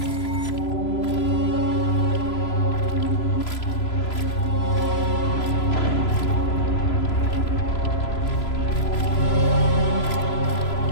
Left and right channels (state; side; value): late; right; 3.0 ms